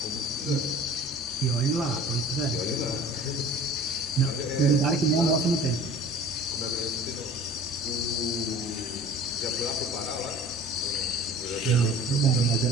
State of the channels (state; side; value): normal; both; correlation 0.45